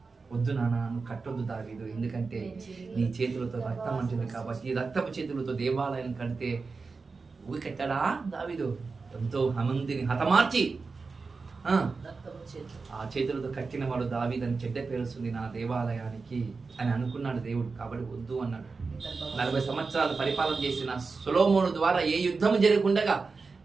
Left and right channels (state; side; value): quieter; left; 4.4 dB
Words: వద్దు నాన్న, నువ్వు కట్టొద్దు దావీదు, ఎందుకంటే నీ చేతులతో రక్తం అంటుంది కాబట్టి ఈ రక్తపు చేతులతో దేవాలయం కడితే ఊరి కట్టాడా దావీదు? ఎంతో మందిని హతమార్చి ఆ చేతులతో కట్టిన వాడు దావీదని చెడ్డ పేరుస్తుంది నా దేవాలయానికి అని అనుకున్నాడు దేవుడు. కాబట్టి వద్దు అన్నాడు. 40 సంవత్సరాలు పరిపాలన చేసిన సొలొమోను ద్వారా ఏ యుద్ధం జరగకుండా